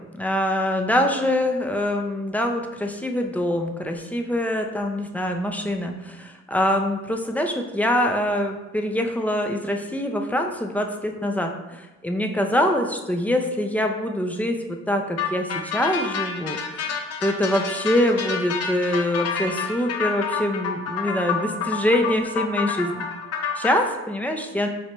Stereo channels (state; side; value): normal; both; correlation 0.61